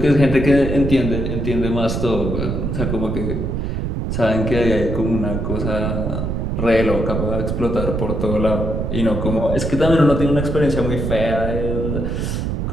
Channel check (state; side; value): noise; right; rumble, 2 dB below the sound